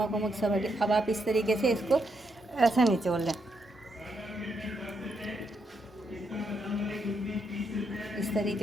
वमक सब हट। अब आप इस तरीके से इसको ऐसे निचोड़ लें, इस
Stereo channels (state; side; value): normal; both; correlation 0.79